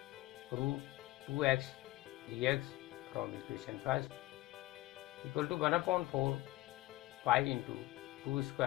root 2x dx from equation first equal to 1 upon 4 pi into 2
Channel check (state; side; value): quieter; right; 18.0 dB